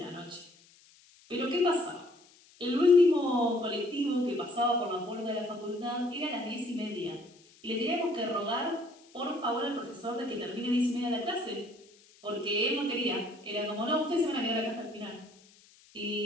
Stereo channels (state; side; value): noise; left; hiss, 27 dB below the sound